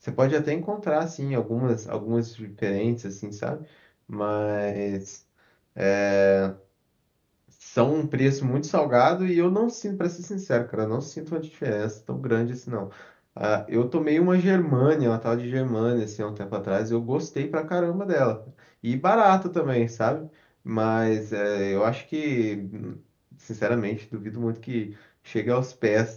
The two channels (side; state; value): both; identical; correlation 1.00